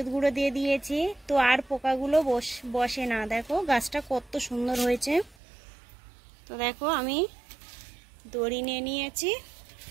গুঁড়ো দিয়ে দিয়েছি, তো আর পোকাগুলো বসে না। দেখো গাছটা কত সুন্দর হয়েছে। তো দেখো আমি দড়ি নিয়ে নিয়েছি।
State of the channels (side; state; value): left; drops out; at 5.4 s